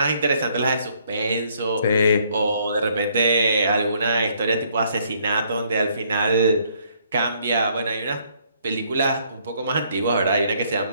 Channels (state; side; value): inverted; both; correlation -0.67